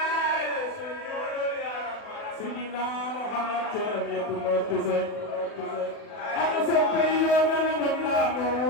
Sidina Muhammad jaram ya ko tese am soppe yo mana mamla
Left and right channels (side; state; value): right; late; 40 ms